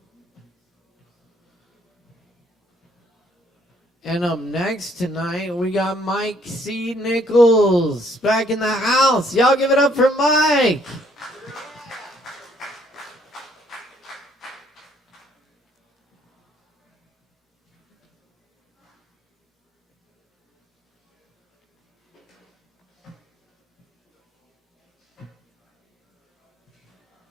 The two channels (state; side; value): normal; both; correlation 0.65